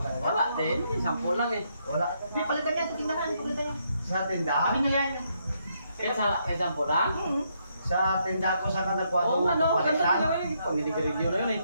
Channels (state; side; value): inverted; both; correlation -0.76